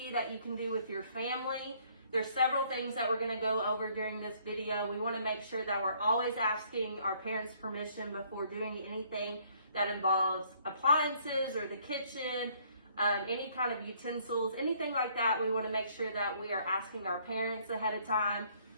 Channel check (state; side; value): inverted; both; correlation -0.63